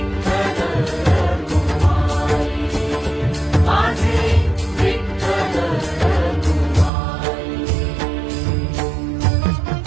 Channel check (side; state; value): left; drops out; at 6.9 s